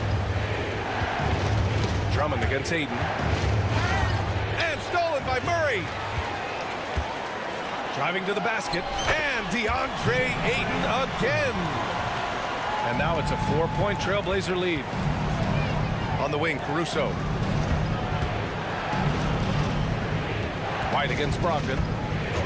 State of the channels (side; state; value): both; identical; correlation 1.00